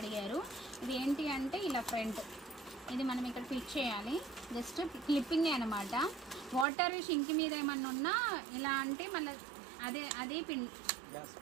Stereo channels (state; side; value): drops out; left; at 6.7 s